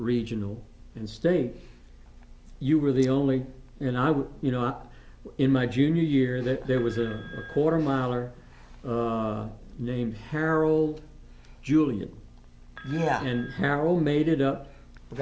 and state, you were the only. And in my junior year, there was a quarter miler named Harold Julian. Yeah. And Harold made it up. We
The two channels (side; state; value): both; identical; correlation 1.00